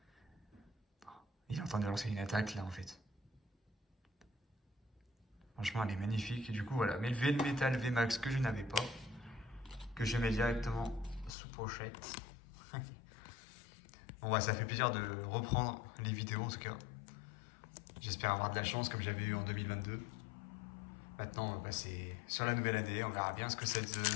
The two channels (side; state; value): right; drops out; at 11.3 s